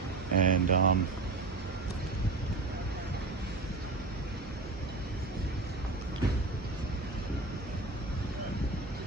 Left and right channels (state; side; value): quieter; left; 3.4 dB